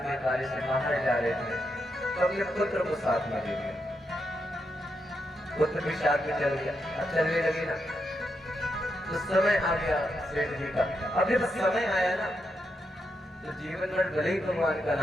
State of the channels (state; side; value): normal; both; correlation 0.83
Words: कार्य से बाहर जा रहे थे तो अपने पुत्र को साथ में ले लिया। पुत्र भी साथ में चल गया। अब चलने लगी ना तो समय आ गया सेठ जी का। अब जब समय आया ना तो जीवन भर भले ही भगवान का